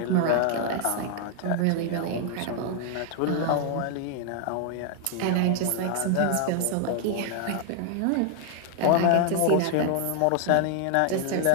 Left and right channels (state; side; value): different; both; correlation 0.00